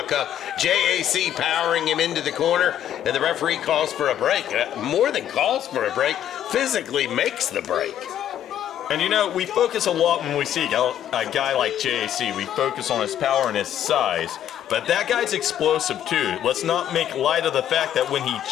JAC powering him into the corner, and the referee calls for a break. More than calls for a break, physically makes the break. And you know, we focus a lot when we see a guy like JAC. We focus on his power and his size. But that guy's explosive too. Let's not make light of the fact that when he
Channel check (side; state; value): right; quieter; 10.7 dB